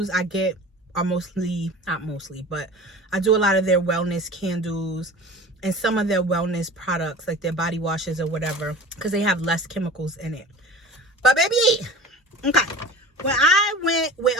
I get are mostly, not mostly, but I do a lot of their wellness candles and some of their wellness products, like their body washes or whatever, because they have less chemicals in it. But baby, okay. When I went with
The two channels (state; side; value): normal; both; correlation 0.38